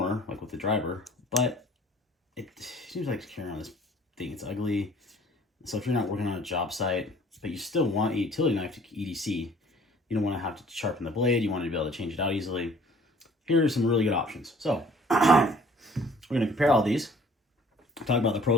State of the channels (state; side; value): normal; both; correlation 0.54